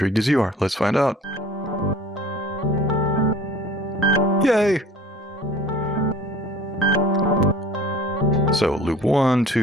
as you are. Let's find out. Yay! So loop 1,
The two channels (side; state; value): both; normal; correlation 0.47